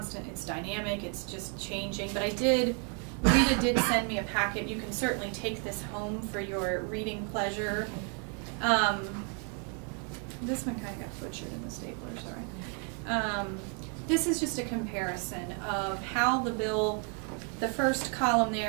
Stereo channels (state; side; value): quieter; left; 39.8 dB